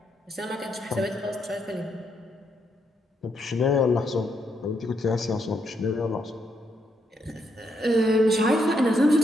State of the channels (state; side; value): normal; both; correlation 0.77